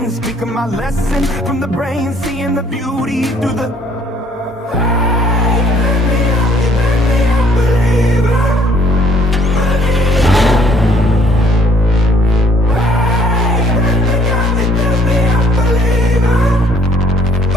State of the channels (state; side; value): normal; both; correlation 0.62